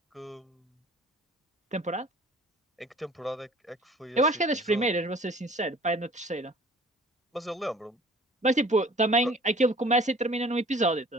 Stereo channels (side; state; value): both; normal; correlation 0.50